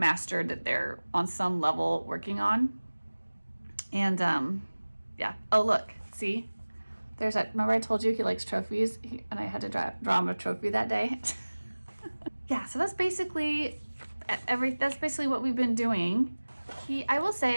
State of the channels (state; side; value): inverted; both; correlation -1.00